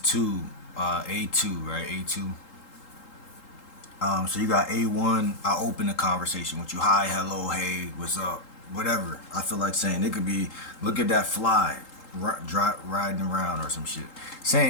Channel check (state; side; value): late; right; 3.8 ms